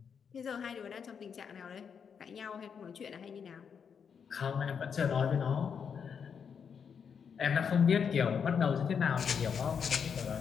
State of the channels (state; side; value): quieter; right; 6.8 dB